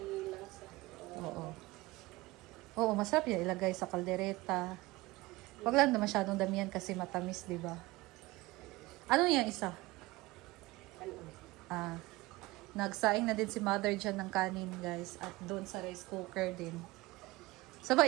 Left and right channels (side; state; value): left; quieter; 20.7 dB